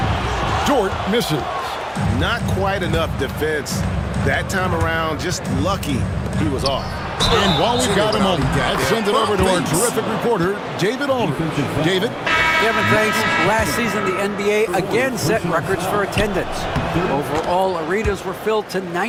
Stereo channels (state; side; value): identical; both; correlation 1.00